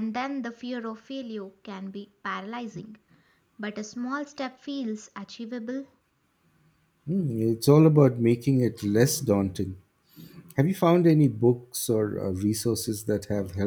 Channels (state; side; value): identical; both; correlation 1.00